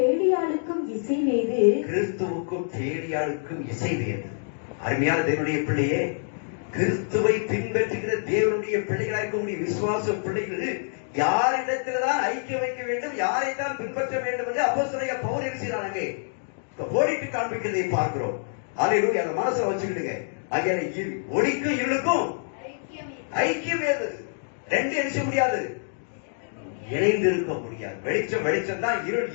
இசைவேது? கிறிஸ்துவுக்கும் பேலியாளுக்கும் இசைவேது. அருமையான தேவனுடைய பிள்ளையே, கிறிஸ்துவை பின்பற்றுகிற தேவனுடைய பிள்ளைகளாக இருக்கக்கூடிய விசுவாச பிள்ளைகள் யாரிடத்தில்தான் ஐக்கியம் வைக்க வேண்டும், யாரைத்தான் பின்பற்ற வேண்டும் என்று அப்போஸ்தலனாகிய பவுல் எழுதுகிறாங்க. கோடிட்டு காண்பிக்கிறதை பார்க்கிறோம். அல்லேலூயா, அந்த மனசுல வச்சுக்கிடுங்க. ஆகிய ஒளிக்கும் இருளுக்கும் ஐக்கியம் ஏது? ரெண்டு எழுத முடியாது, இணைந்து இருக்க முடியாது. வெளிச்சம் வெளிச்சம் தான், இருள்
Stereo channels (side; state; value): right; silent; digital silence